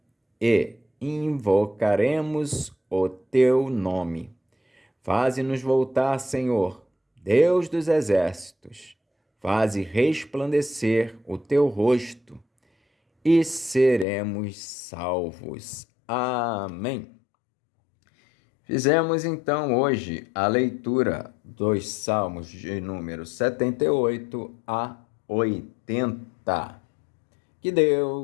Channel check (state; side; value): drops out; right; at 14.1 s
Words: e invocaremos o teu nome. Faze-nos voltar, Senhor, Deus dos exércitos. Faze resplandecer o teu rosto e seremos salvos. Amém. Fizemos então hoje a leitura dos Salmos de número 78 a 80. Que